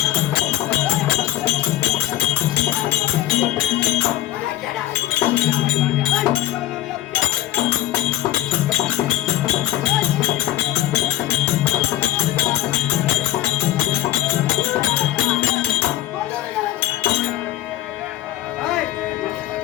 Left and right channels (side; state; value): right; quieter; 14.3 dB